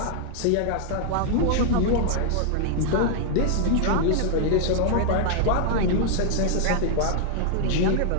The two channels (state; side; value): different; both; correlation 0.00